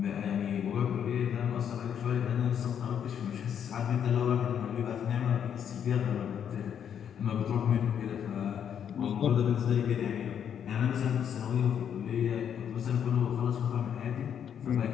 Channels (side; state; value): right; quieter; 8.6 dB